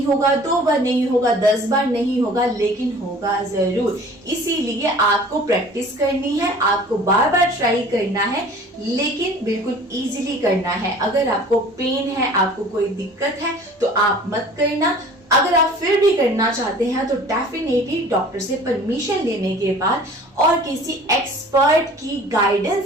होगा, 2 बार नहीं होगा, 10 बार नहीं होगा, लेकिन होगा जरूर। इसीलिए आपको प्रैक्टिस करनी है, आपको बार बार ट्राई करना है, लेकिन बिल्कुल इजीली करना है। अगर आपको पेन है, आपको कोई दिक्कत है, तो आप मत करना। अगर आप फिर भी करना चाहते हैं तो डेफिनेटली डॉक्टर से परमिशन लेने के बाद और किसी एक्सपर्ट की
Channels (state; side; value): normal; both; correlation 0.47